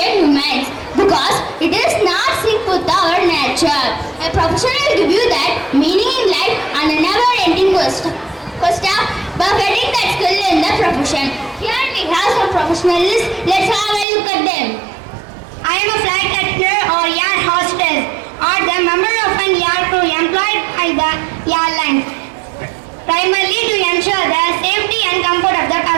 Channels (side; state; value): left; drops out; at 14.1 s